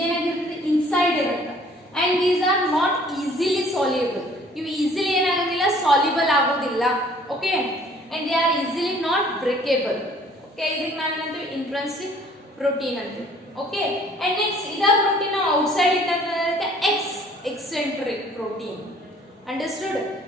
inside ಇರುತ್ತೆ and these are not easily soluble. ಇವು easily ಏನಾಗೋದಿಲ್ಲ soluble ಆಗೋದಿಲ್ಲ. Okay, and they are easily not breakable. Okay, ಇದಕ್ಕೆ ನಾವು ಏನಂತೀವಿ intrinsic protein ಅಂತೀವಿ. Okay, and next ಇದ protein outside ಇದ್ದಂತೆ eccentric protein. Understood?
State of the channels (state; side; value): normal; both; correlation 0.56